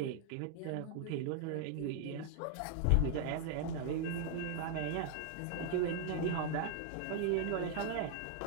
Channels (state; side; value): different; both; correlation 0.00